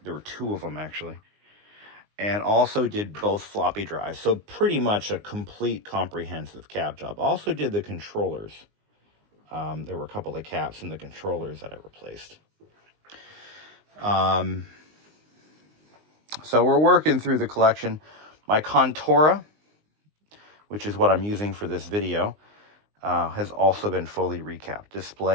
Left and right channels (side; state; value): left; late; 19 ms